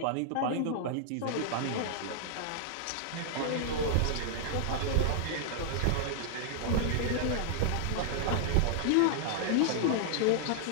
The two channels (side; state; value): both; different; correlation -0.01